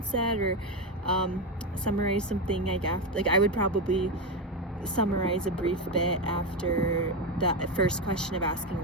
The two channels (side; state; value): both; normal; correlation 0.12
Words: set, or summarize something like after, like I would probably summarize a brief bit after that first question of asking